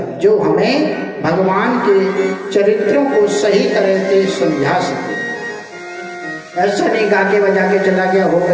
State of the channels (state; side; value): identical; both; correlation 1.00